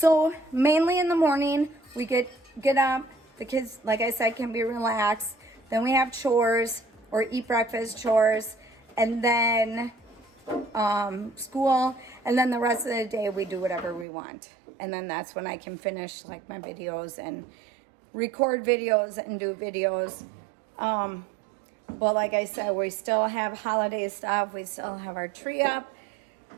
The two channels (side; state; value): left; drops out; at 14.1 s